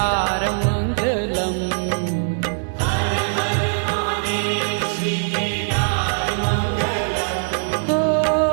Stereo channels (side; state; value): left; silent; 65 dB below the other